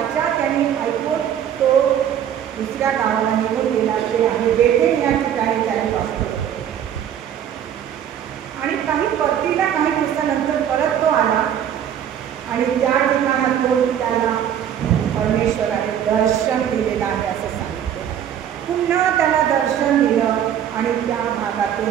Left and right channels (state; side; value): quieter; left; 9.7 dB